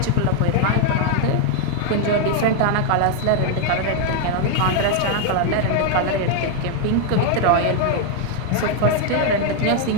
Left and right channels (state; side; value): different; both; correlation 0.00